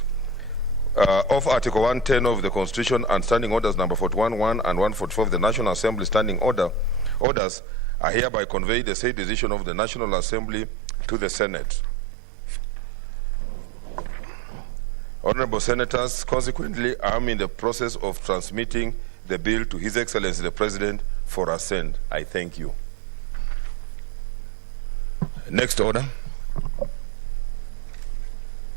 of Article 110 of the Constitution and Standing Orders number 41.1 and 144 of the National Assembly standing orders are hereby conveyed the said decision of the National Assembly to the Senate. Honorable Senators, consequently, I am in the process of transmitting the bill to His Excellency the President for assent. I thank you. Next order.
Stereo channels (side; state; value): left; drops out; at 7.2 s